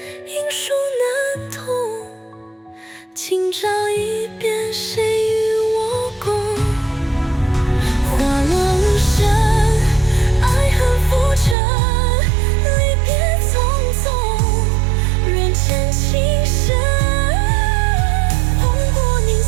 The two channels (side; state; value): left; drops out; at 11.6 s